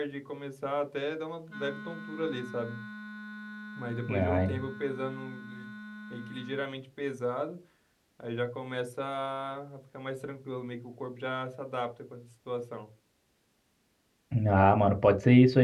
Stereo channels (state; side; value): identical; both; correlation 1.00